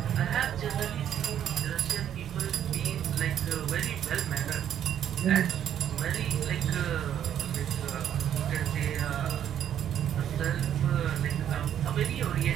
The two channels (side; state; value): left; quieter; 10.0 dB